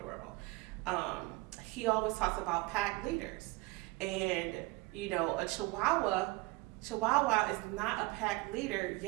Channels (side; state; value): left; quieter; 22.5 dB